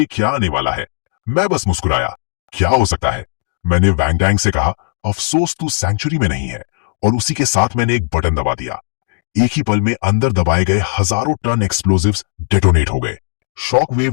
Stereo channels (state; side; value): silent; right; 56 dB below the other